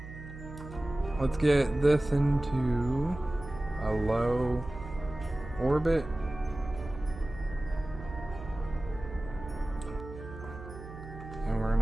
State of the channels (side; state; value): right; noise; hum, 13 dB below the sound